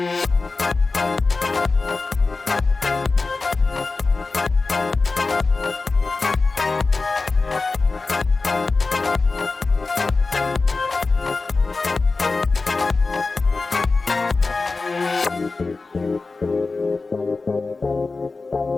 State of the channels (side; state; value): right; quieter; 3.8 dB